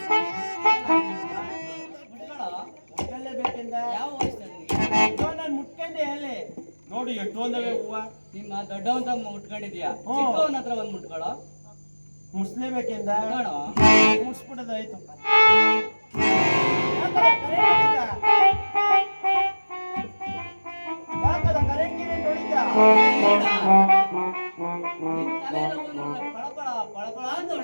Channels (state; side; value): inverted; both; correlation -1.00